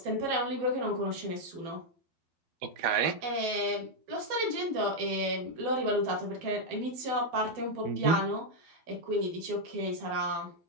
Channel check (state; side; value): late; left; 12 ms